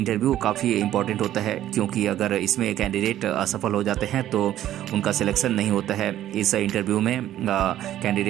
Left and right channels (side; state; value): left; quieter; 12.5 dB